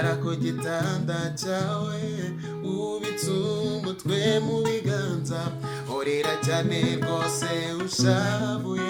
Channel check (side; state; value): both; identical; correlation 1.00